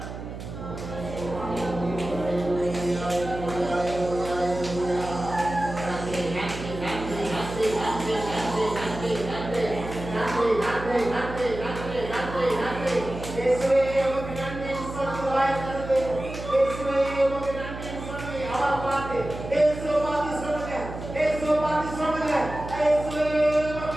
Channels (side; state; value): right; noise; hum, 10 dB below the sound